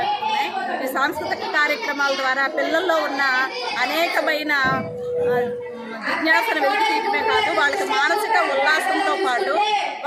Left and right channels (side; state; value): both; identical; correlation 1.00